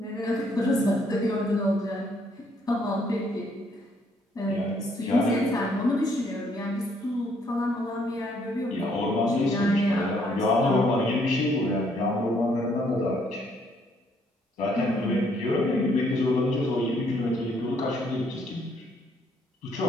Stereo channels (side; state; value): both; normal; correlation 0.68